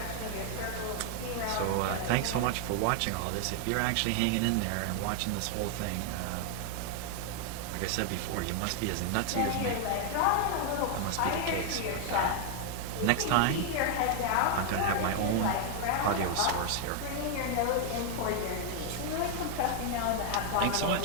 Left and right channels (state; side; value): different; both; correlation 0.00